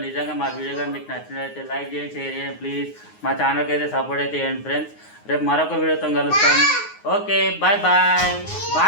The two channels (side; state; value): right; late; 9.6 ms